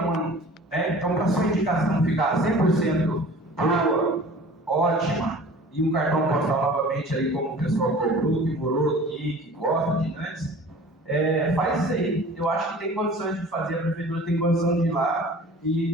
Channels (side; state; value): both; normal; correlation 0.44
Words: né? Então, para a sua indicação ficar 100% boa, ótima, e um cartão postal novamente aí, como o pessoal cobrou, que morou aqui, que gosta de antes, faz isso aí. Eu acho que tem condições de fazer, a prefeitura tem condição de ir lá